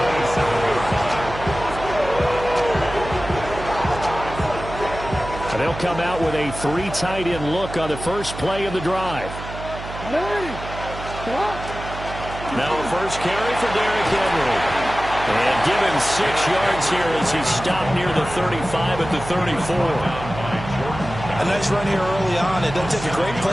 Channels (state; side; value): noise; right; hum, 10 dB below the sound